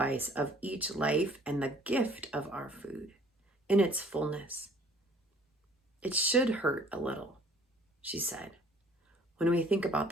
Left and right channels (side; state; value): both; normal; correlation 0.54